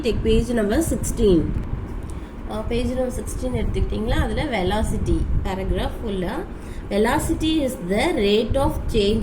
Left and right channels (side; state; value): both; identical; correlation 1.00